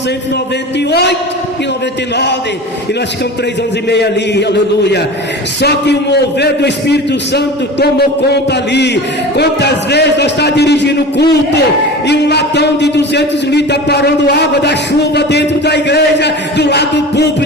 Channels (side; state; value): both; normal; correlation 0.34